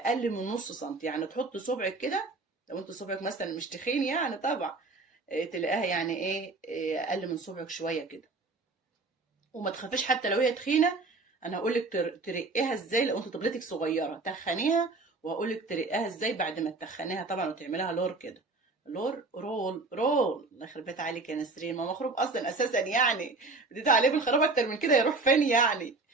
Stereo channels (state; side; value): quieter; left; 3.6 dB